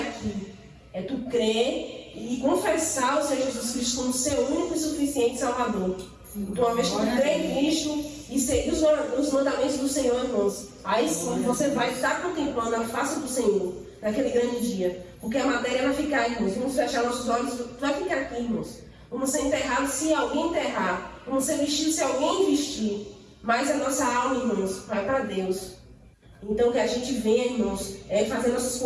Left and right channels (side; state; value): both; identical; correlation 1.00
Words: É tu crer e confessar o Senhor Jesus Cristo como seu único e suficiente Salvador. Então, uma vez que tu crê em Cristo e seguir os mandamentos do Senhor, irmãos, aí sim você vai estar contemplando a face do Senhor naquele grande dia. Porque a matéria vai ficar, irmãos. Vamos fechar nossos olhos, vai ficar aqui, irmãos. Vamos ser enterrados se alguém enterrar. Vamos ser vestidos se alguém vestir. Mas a nossa alma, irmãos, vai para Deus. Então, que a gente venha, irmãos, fazer nossa